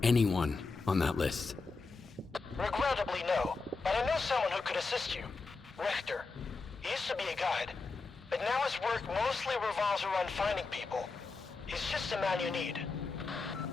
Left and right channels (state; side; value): quieter; right; 4.1 dB